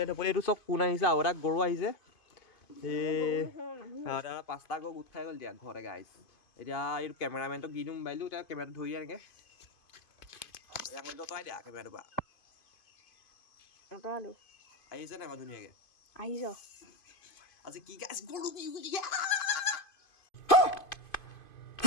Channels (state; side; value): late; right; 2.5 ms